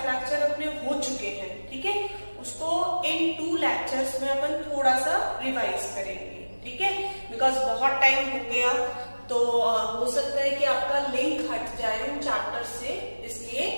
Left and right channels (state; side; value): inverted; both; correlation -1.00